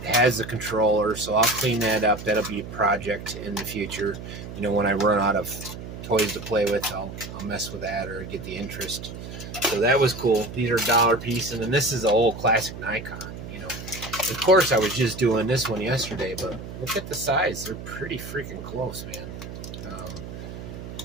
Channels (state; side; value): noise; right; hum, 10 dB below the sound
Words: It has the controller, so I'll clean that up. That'll be a project in the future. You know, when I run out of toys to play with, I'll mess with that or get the interest. So that was cool. These are $1 piece, and then this is the old classic Nikon. You know, of course I was just doing this one yesterday, but look at the size. They're pretty freaking close, man.